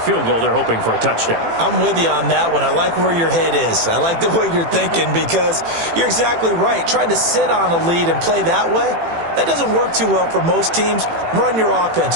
goal. They're hoping for a touchdown. I'm with you on that one. I like where your head is. I like the way you're thinking because you're exactly right. Trying to sit on a lead and play that way, That doesn't work too well for most teams. Run your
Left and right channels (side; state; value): left; late; 18 ms